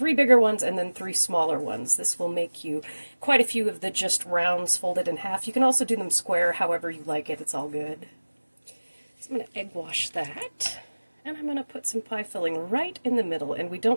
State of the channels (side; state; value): both; inverted; correlation -1.00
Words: bigger ones and then 3 smaller ones. This will make you quite a few of the just rounds folded in half. You can also do them square, however you like it. It's all good. So I'm going to egg wash that, and I'm going to put some pie filling right in the middle, and we